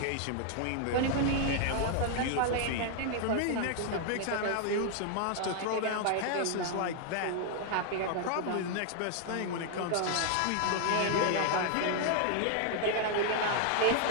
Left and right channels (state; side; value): different; both; correlation 0.00